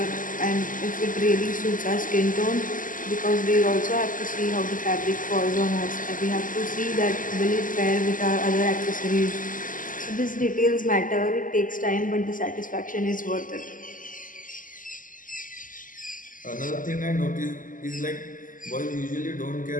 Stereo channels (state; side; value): late; right; 0.39 ms